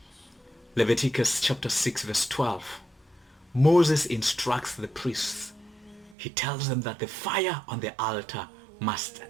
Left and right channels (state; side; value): drops out; left; at 6.2 s